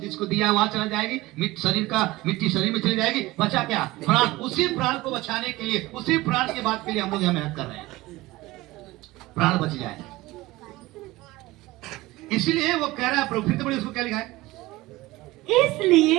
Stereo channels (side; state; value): left; quieter; 19.2 dB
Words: दिया वहां चला जाएगी, मिट्टी शरीर में चली जाएगी, बचा क्या प्राण। उसी प्राण को बचाने के लिए, उसी प्राण के बाद के लिए हम लोग यहाँ मेहनत कर रहे हैं, प्राण बच जाए। इसलिए वो कह रहा है, प्रभु फिर तो बड़ी उसको क्या लिखा है,